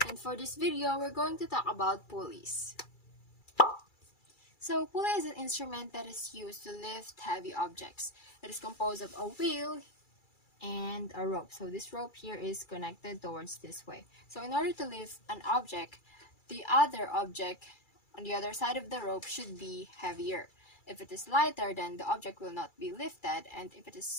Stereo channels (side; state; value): right; late; 2.3 ms